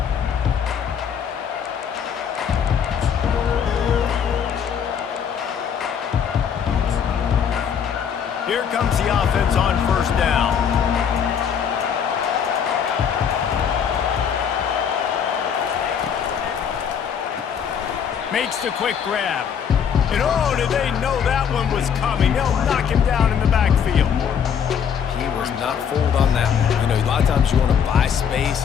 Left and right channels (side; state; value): right; quieter; 7.7 dB